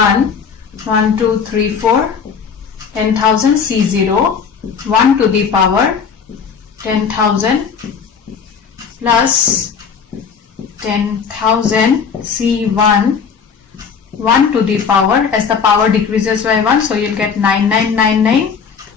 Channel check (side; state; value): right; quieter; 6.4 dB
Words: 2, 3, 4, 10,000 C0, 1 to the power 10,000 plus 10,000 C1, 1 to the power, as the power decreases by 1, so you'll get 9999